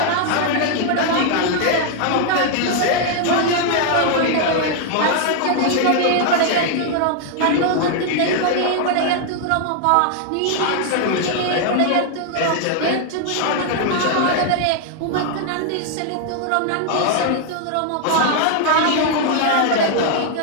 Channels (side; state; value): both; different; correlation 0.00